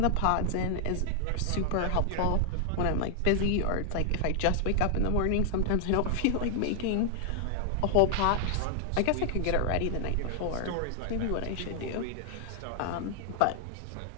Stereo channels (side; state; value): both; different; correlation 0.00